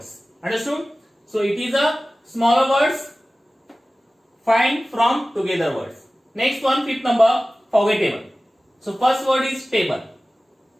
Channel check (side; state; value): both; normal; correlation 0.97